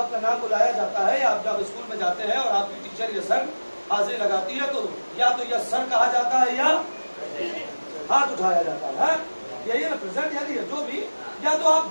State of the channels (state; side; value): inverted; both; correlation -1.00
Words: नाम बुलाया जाता है, आप जब स्कूल में जाते हैं और आपकी टीचर या सर हाजिरी लगाती है, तो या तो यस सर कहा जाता है या हाथ उठाया जाता है। यही है ना, प्रेजेंट यानी जो भी, या तो आप